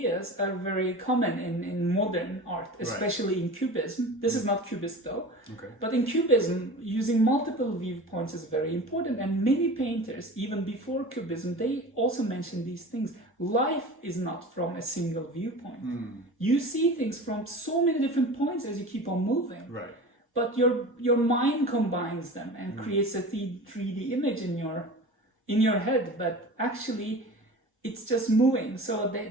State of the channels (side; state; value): both; normal; correlation 0.36